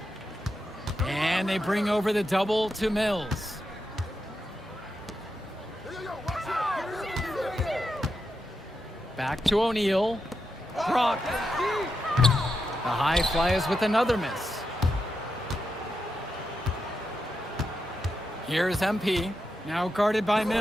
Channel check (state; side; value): normal; both; correlation 0.86